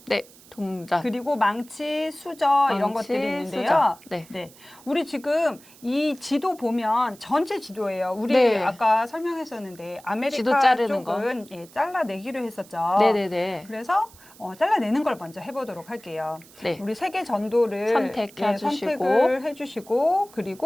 네, 동작. 그리고 망치, 수저 이런 망치, 것들이 있는데요. 수저. 네. 네. 우리 지금 이 지도 보면 전체 지도예요. 우리 네. 아까 설명했었는데 지도 아메리카 자르는 쪽은 예, 잘라내기로 했었죠. 네네네. 그래서 잘라내는 걸 먼저 해보도록 할게요. 네. 우리 세계 전도를 선택해 주시고. 선택을 해주시고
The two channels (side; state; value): right; noise; hiss, 23 dB below the sound